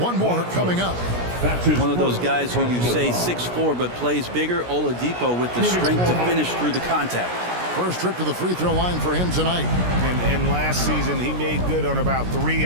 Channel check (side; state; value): left; late; 17 ms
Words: more coming up. One of those guys who you say 6'4", but plays bigger. Oladipo with the strength to finish through the contact. First trip to the free throw line for him tonight. And last season, he made good on about 3